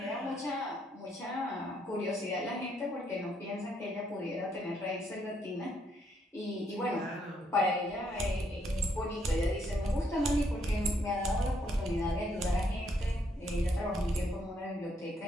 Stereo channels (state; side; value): normal; both; correlation 0.73